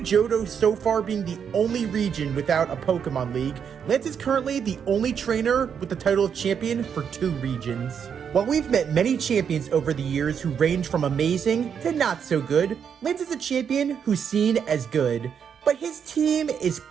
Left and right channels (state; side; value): quieter; left; 7.5 dB